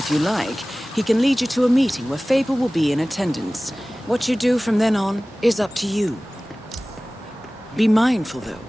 you like, he can lead you to a meeting where Faber will be in attendance. What you do from then on is up to you. Be mindful, though.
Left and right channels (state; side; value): normal; both; correlation 0.98